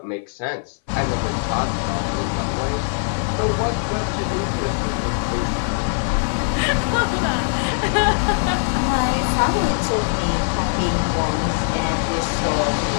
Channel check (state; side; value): silent; right; 58 dB below the other